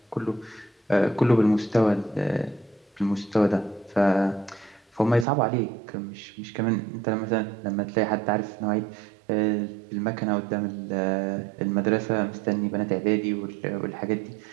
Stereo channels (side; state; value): left; drops out; at 5.2 s